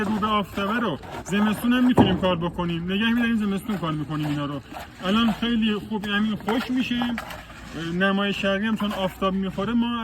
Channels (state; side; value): identical; both; correlation 1.00